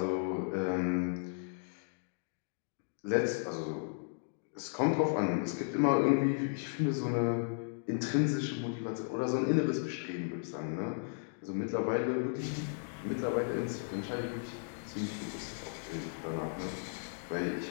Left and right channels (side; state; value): right; silent; digital silence